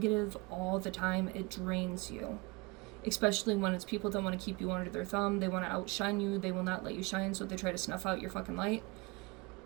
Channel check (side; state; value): left; quieter; 26.1 dB